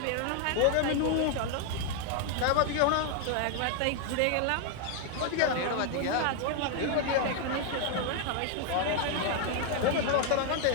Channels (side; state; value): both; different; correlation 0.00